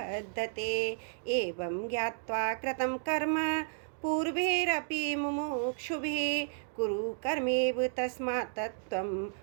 एवं ज्ञात्वा कृतं कर्म पूर्वैरपि मुमुक्षुभिः कुरु कर्मेव तस्मात् त्वं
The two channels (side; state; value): left; silent; digital silence